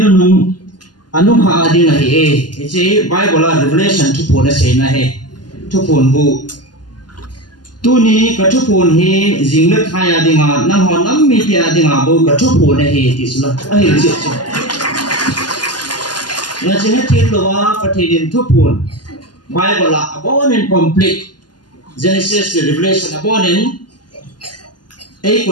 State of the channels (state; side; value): late; right; 0.70 ms